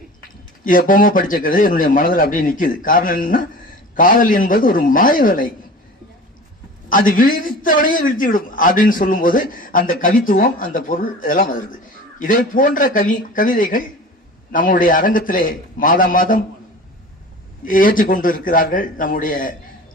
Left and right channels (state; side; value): normal; both; correlation 0.38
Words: இது எப்பவுமே படிச்ச கவிதை என்னுடைய மனதில் அப்படியே நிக்குது. காரணம் என்னன்னா, காதல் என்பது ஒரு மாய வலை, அது விழித்தவனையே வீழ்த்திவிடும் அப்படின்னு சொல்லும் போது அந்த கவித்துவம், அந்த பொருள் இதெல்லாம் வருது. இதை போன்ற கவிதைகள் நம்முடைய அரங்கத்திலே மாதம் ஏற்றிக்கொண்டு இருக்கிறார்கள் நம்முடைய